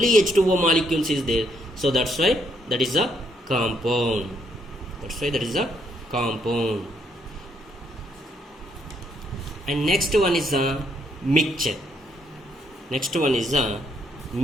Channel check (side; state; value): both; normal; correlation 0.72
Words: H2O molecules is there. So that's why that is a compound. That's why that is a compound. And next one is a mixture. Next one is a